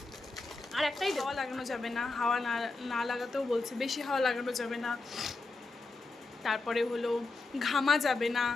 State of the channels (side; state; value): right; quieter; 3.5 dB